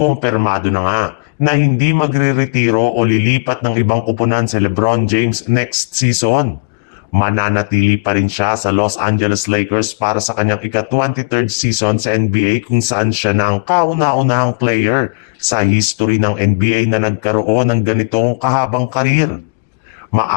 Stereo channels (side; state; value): right; quieter; 30.7 dB